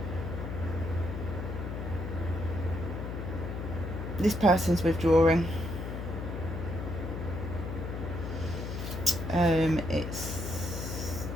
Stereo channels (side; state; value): left; noise; hum, 5 dB below the sound